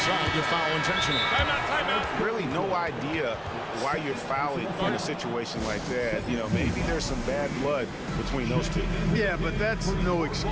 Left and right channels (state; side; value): identical; both; correlation 1.00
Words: to foul intentionally. Timeout. Really no idea why you're fouling in a situation like that. You know, maybe there's some bad blood between those two. Yeah, but that's no